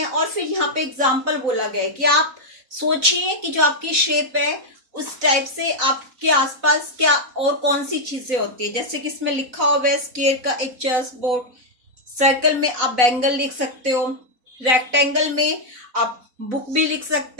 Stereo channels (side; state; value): left; late; 4.0 ms